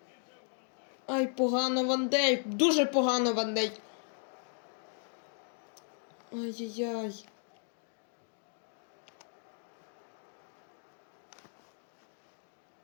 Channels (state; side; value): silent; right; 54 dB below the other